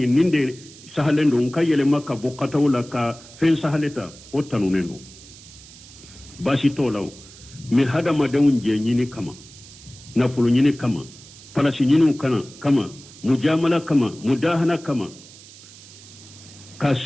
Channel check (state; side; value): noise; right; hiss, 20 dB below the sound